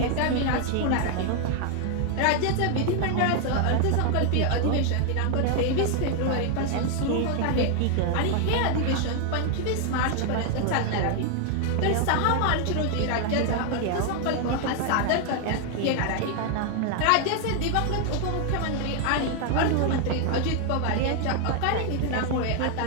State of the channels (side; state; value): both; different; correlation 0.00